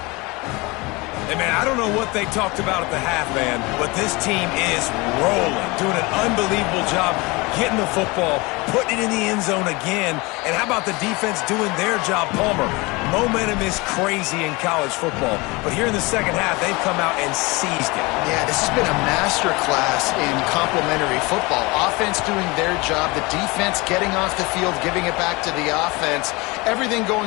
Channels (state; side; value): quieter; right; 24.8 dB